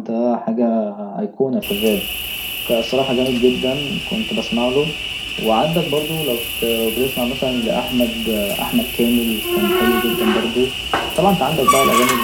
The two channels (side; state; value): both; identical; correlation 1.00